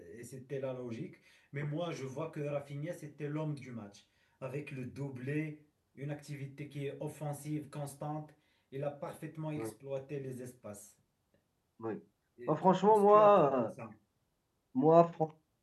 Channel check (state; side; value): identical; both; correlation 1.00